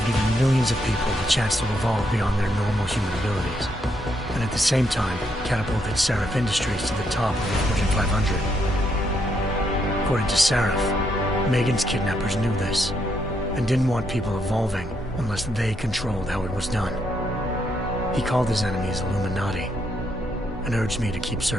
given millions of people the chance to evolve beyond their normal human abilities, and at the same time catapulted Sarif Industries to the top of the Fortune 500. According to Sarif, Megan's kidnappers knew this, and didn't want people evolving unless they controlled how it was done. He called his enemies Illuminati, and urged me to keep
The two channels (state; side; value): normal; both; correlation 0.77